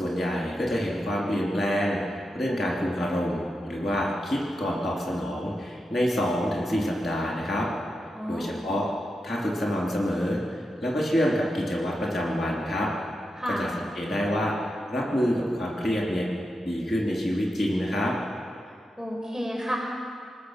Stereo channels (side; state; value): both; normal; correlation 0.88